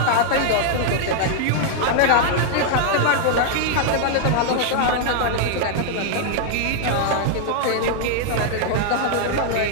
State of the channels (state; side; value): different; both; correlation 0.00